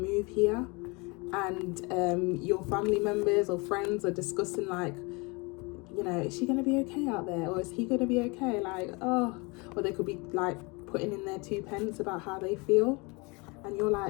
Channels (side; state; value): right; quieter; 28.0 dB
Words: here, and your family members or friends are discussing like, you know, is she going to be okay out there, or is he going to be okay, like, oh, or they could be like putting in their 2 pence about how they feel, and you're